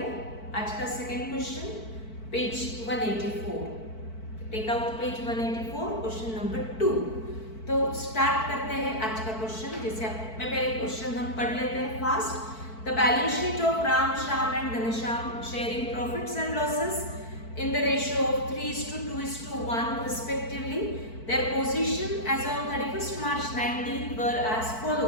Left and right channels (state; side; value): late; right; 4.5 ms